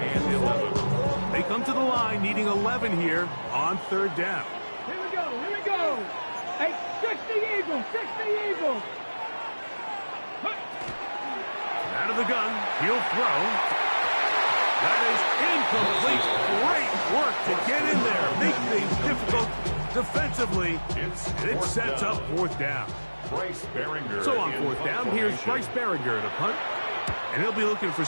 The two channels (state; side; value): inverted; both; correlation -1.00